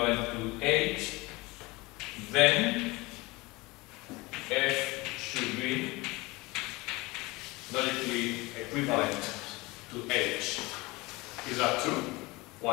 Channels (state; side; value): quieter; right; 22.9 dB